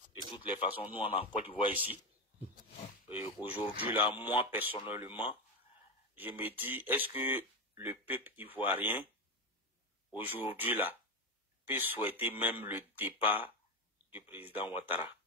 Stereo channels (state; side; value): normal; both; correlation 0.14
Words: de toutes les façons, nous, on a en Côte d'Ivoire ici. Aujourd'hui, là, moi, personnellement, je me dis, est-ce que le peuple ivoirien, aujourd'hui, là, peut souhaiter même le départ du président Ouattara?